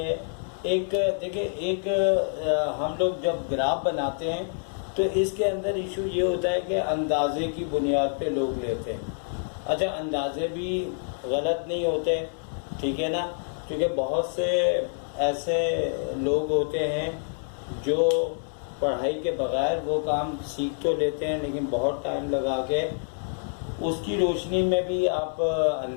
एक देखिए, एक हम लोग जब ग्राफ बनाते हैं तो इसके अंदर इशू ये होता है कि अंदाजे की बुनियाद पे लोग लेते हैं। अच्छा, अंदाजे भी गलत नहीं होते, ठीक है ना, क्योंकि बहुत से ऐसे लोग होते हैं जो पढ़ाई के बगैर वो काम सीख तो लेते हैं, लेकिन बहुत टाइम लगा के उसकी रोशनी में भी आप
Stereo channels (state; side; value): silent; right; 60 dB below the other